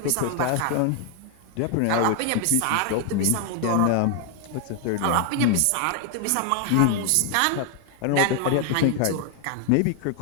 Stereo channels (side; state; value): both; different; correlation 0.00